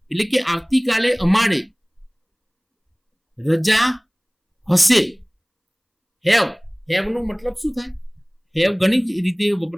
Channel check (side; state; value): both; identical; correlation 1.00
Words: એટલે કે આવતીકાલે અમારે રજા હશે. હેવ નો મતલબ શું થાય? હેવ ઘણી જ રીતે